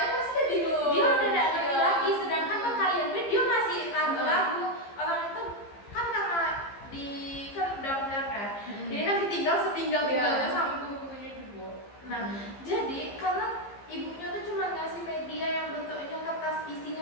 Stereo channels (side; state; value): right; late; 15 ms